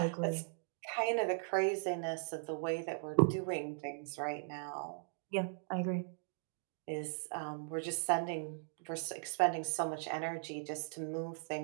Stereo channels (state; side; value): silent; left; digital silence